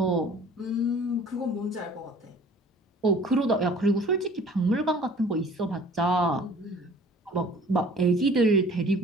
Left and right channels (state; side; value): normal; both; correlation 0.50